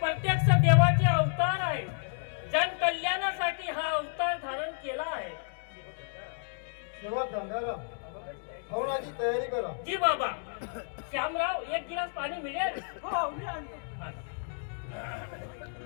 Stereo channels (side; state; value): right; silent; digital silence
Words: देवाचे अवतार आहे. जन कल्याणासाठी हा अवतार धारण केला आहे. तेव्हा गंगाराम हवनाची तयारी करा. जी बाबा. श्यामराव एक गिलास पाणी मिळेल. हो मी आणतो.